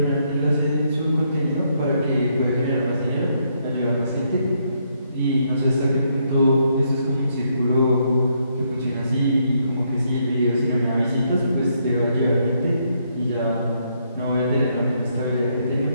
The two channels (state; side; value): inverted; both; correlation -0.74